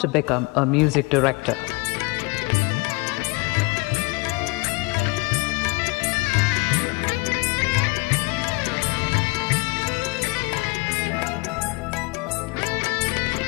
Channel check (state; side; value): quieter; right; 26.2 dB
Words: become a music director.